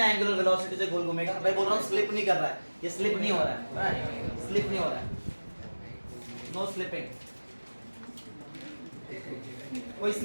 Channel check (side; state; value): both; inverted; correlation -1.00